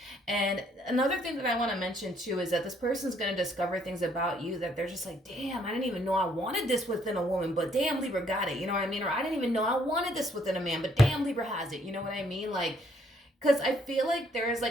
And another thing that I want to mention too is that this person's going to discover things about you that they're just like, damn, I didn't even know I wanted this within a woman, but damn, Libra got it. You know what I mean? Or I didn't even know I wanted this within a man, but damn, Libra has it. You know what I mean? Like, because I feel like there is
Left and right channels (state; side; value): normal; both; correlation 0.67